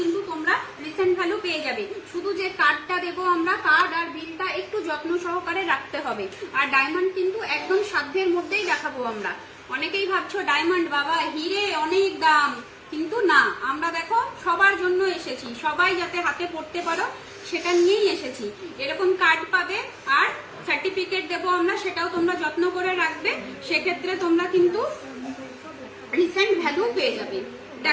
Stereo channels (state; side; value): identical; both; correlation 1.00